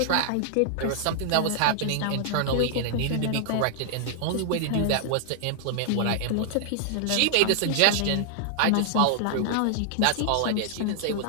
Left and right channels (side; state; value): both; different; correlation -0.01